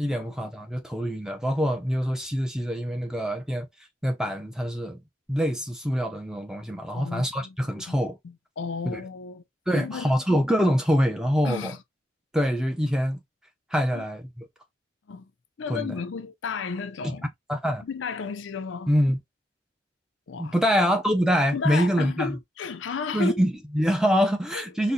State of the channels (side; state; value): both; normal; correlation 0.83